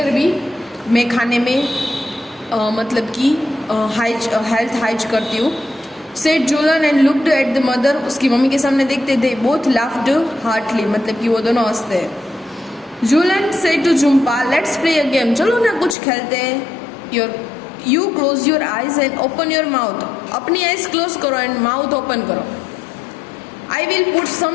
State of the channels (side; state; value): right; drops out; at 16.0 s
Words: भी मैं खाने में मतलब कि हेल्थ हाइज करती हूँ. Said Jhulan and looked at the mother. उसकी मम्मी के सामने देखते थे. बोथ लाफ्ड हार्टली मतलब कि वो दोनों हंसते हैं. Jhulan said to Jhumpa, let's play a game. चलो ना कुछ खेलते हैं. You close your eyes and open your mouth. अपनी आईज क्लोज करो एंड माउथ ओपन करो. I will put